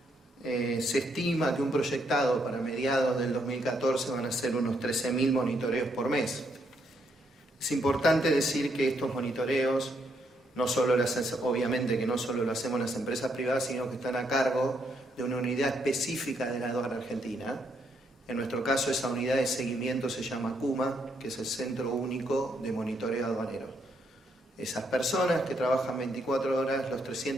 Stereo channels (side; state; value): both; normal; correlation 0.75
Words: se estima que un proyectado para mediados del 2014 van a ser unos 13.000 monitoreos por mes. Es importante decir que estos monitoreos obviamente que no solo lo hacemos las empresas privadas, sino que están a cargo de una unidad específica de la aduana argentina. En nuestro caso, esa unidad de seguimiento se llama CUMA, que es el Centro Único de Monitoreo Aduanero. Esas personas que trabajan 24 horas los